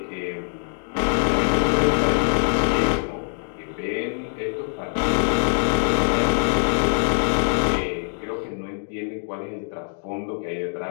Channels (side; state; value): right; silent; digital silence